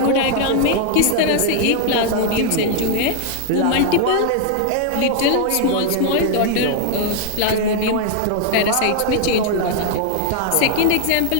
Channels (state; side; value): different; both; correlation 0.00